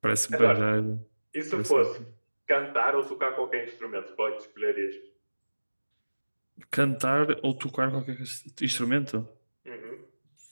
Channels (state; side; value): inverted; both; correlation -1.00